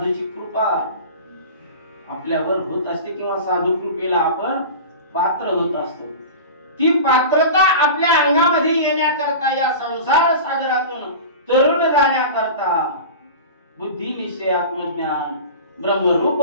कृपा आपल्यावर होत असते किंवा साधू कृपेला आपण पात्र होत असतो. ती पात्रता आपल्या अंगामध्ये येण्याकरता या संसार सागरातून तरुण जाण्याकरता बुद्धी निश्चय आत्मज्ञान ब्रह्मरूप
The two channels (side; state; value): both; inverted; correlation -0.33